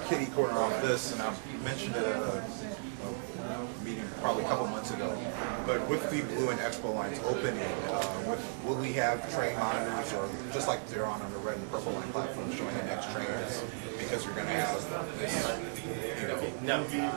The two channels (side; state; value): left; silent; digital silence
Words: kitty corner on this, and I mentioned it at a meeting probably a couple months ago. But with the blue and expo lines opening, will we have train monitors, or just like they're on the red and purple line platform, showing the next train is, because you're going to have this, you know? No,